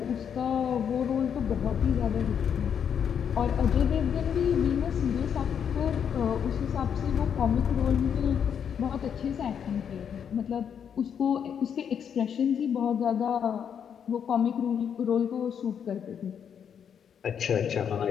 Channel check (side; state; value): right; quieter; 7.9 dB